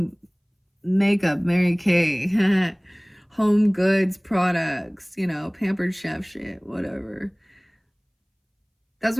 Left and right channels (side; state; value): both; identical; correlation 1.00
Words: makeup, Mary Kay, home goods products, you know, pampered chef shit, whatever. That's